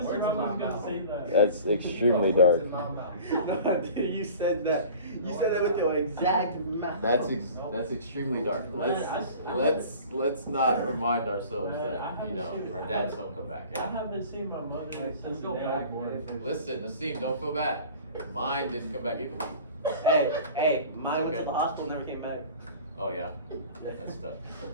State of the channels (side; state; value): both; inverted; correlation -0.43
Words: Ramos was gonna say that. That's extremely dark. No, dude, you said that. You said that with your exact mouth. That's extremely dark. Let's not remind ourselves that, you know, our dads don't come back. I haven't seen my mother since the day I was born. Listen, Nassim, don't feel bad. Mine didn't come back either. Hey, mine went Okay. to the hospital, never came back. Oh yeah, that's tough.